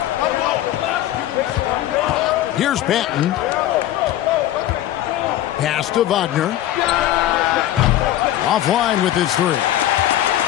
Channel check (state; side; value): quieter; right; 13.3 dB